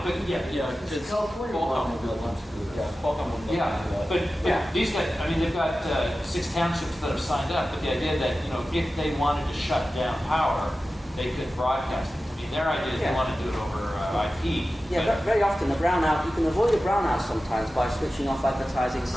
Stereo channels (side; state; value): both; normal; correlation 0.94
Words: yeah. It's California. Yeah, but these guys, I mean, they've got 6 townships that have signed up, but the idea that, if they wanted to shut down power, they could broadcast it. I mean, their idea is they Yeah. want to do it over IP. Yeah, but very often the brownout, you can avoid a brownout sometimes by switching off advertising